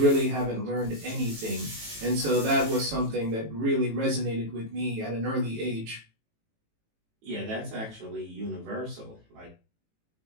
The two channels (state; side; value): late; left; 18 ms